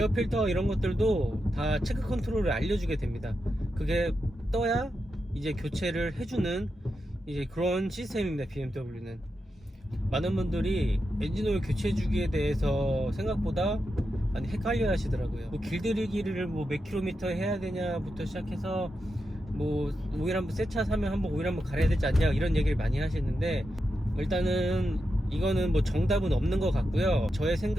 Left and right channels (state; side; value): normal; both; correlation 0.87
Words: 이런 것들도 다 체크 컨트롤을 알려주게 됩니다. 그게 떠야 이제 교체를 해주는 이제 그런 시스템입니다. BMW는. 많은 분들이 엔진오일 교체 주기에 대해서 생각보다 많이 헷갈려 하시더라고요. 길들이기를 몇 킬로미터 해야 되냐부터 시작해서 오일 한번 새 차 사면 한번 오일 한번 갈아야 되지 않냐 이런 얘기를 많이 하시는데, 일단은 이거는 뭐 정답은 없는 것 같고요. 저의